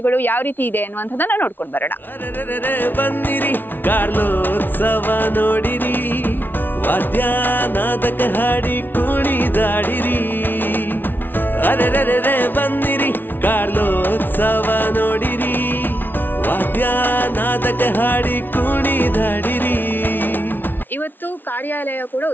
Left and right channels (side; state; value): right; late; 0.093 ms